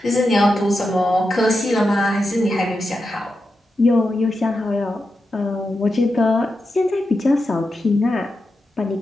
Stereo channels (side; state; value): both; normal; correlation 0.89